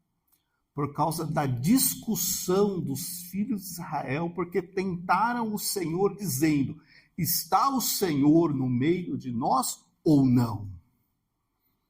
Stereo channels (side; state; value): both; identical; correlation 1.00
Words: por causa da discussão dos filhos de Israel, porque tentaram o Senhor dizendo, está o Senhor no meio de nós ou não?